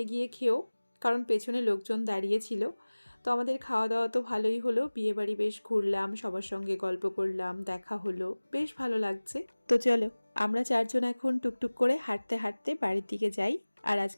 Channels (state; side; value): inverted; both; correlation -1.00